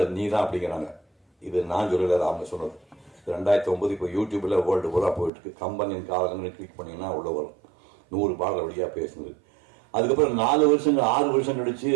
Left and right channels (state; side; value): drops out; left; at 5.3 s